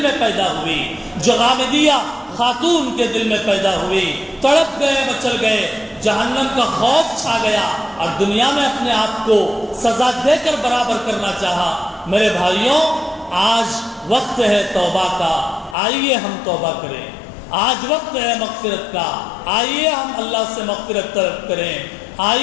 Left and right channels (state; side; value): drops out; right; at 15.8 s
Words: میں پیدا ہوئی، جو غامدیہ خاتون کے دل میں پیدا ہوئی؟ تڑپ گئے، مچل گئے، جہنم کا خوف چھا گیا اور دنیا میں اپنے آپ کو سزا دے کر برابر کرنا چاہا۔ میرے بھائیوں، آج وقت ہے توبہ کا، آئیے ہم توبہ کریں۔ آج وقت ہے مغفرت کا، آئیے ہم اللہ سے مغفرت طلب کریں۔